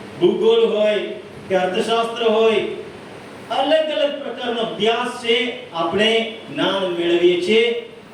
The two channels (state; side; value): identical; both; correlation 1.00